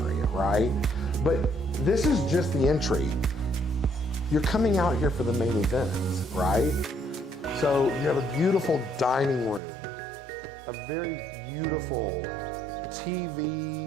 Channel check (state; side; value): drops out; left; at 9.6 s